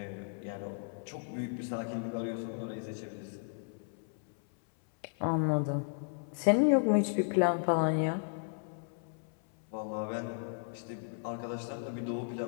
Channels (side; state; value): right; silent; 55 dB below the other